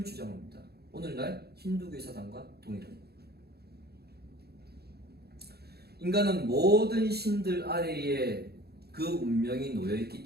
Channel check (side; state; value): left; late; 0.46 ms